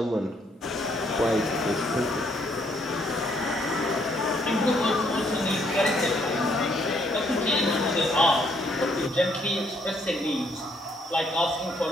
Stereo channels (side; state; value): both; normal; correlation 0.69